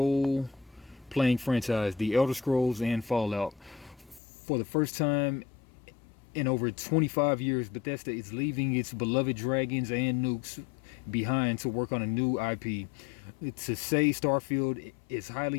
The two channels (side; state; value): right; drops out; at 4.2 s